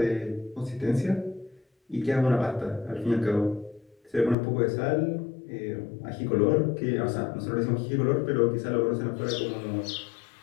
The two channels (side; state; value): right; drops out; at 4.4 s